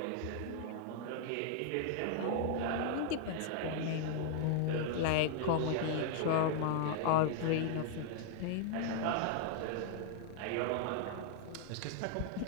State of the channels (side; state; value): both; different; correlation -0.01